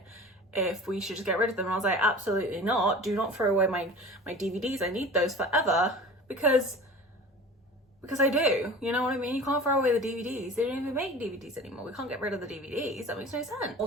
if we should just get rid of them, and I was like, absolutely not. Do not throw away my DVDs. I need those forever because I do, you know what I mean? You can't throw away the DVDs. They don't even make DVDs anymore. We can't get rid of the DVDs. That makes no sense.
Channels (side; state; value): both; normal; correlation 0.39